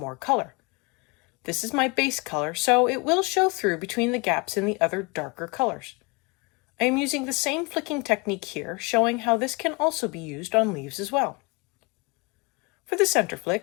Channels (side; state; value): right; quieter; 29.2 dB